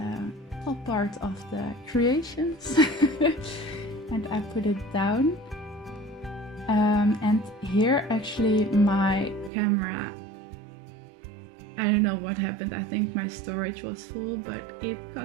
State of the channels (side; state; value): left; drops out; at 9.5 s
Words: top part of the creations. And I put it down. And here actually my camera, I don't know what happened, I think my storage was full, but it